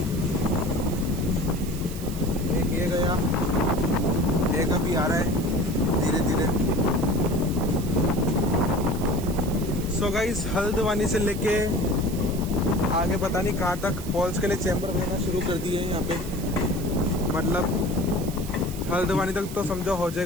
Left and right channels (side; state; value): right; noise; hiss, 14 dB below the sound